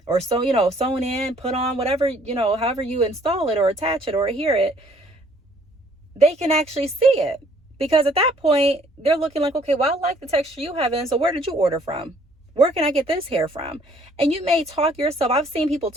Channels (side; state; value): both; normal; correlation 0.61